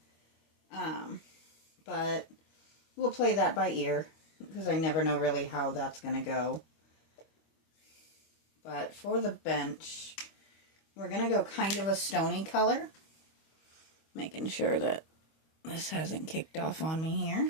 But we'll play that by ear, because I never know really how that's going to go. But for the bench, we're going to go kind of a stony color. Making sure that this hasn't kicked off on me here.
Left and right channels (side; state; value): right; late; 25 ms